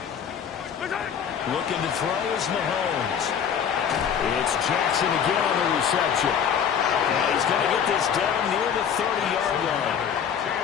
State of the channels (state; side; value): quieter; right; 7.9 dB